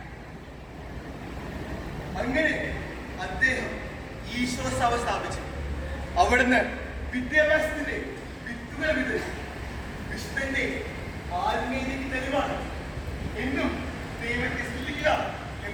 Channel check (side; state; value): both; identical; correlation 1.00